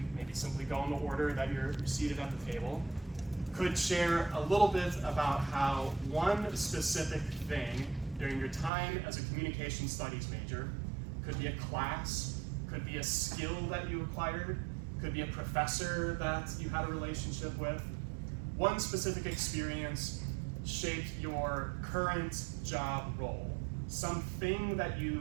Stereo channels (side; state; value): left; drops out; at 8.7 s